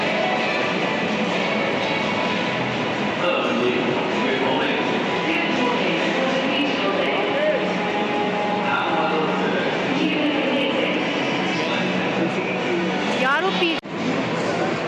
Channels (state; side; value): identical; both; correlation 1.00